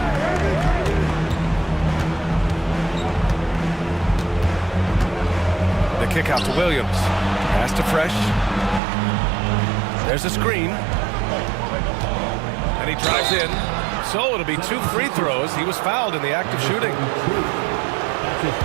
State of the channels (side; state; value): left; drops out; at 8.8 s